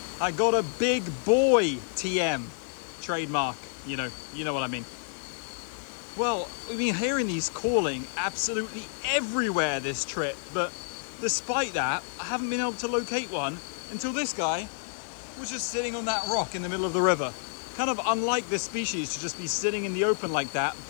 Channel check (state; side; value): silent; right; digital silence